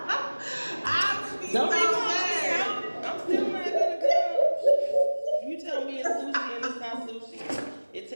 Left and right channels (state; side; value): inverted; both; correlation -1.00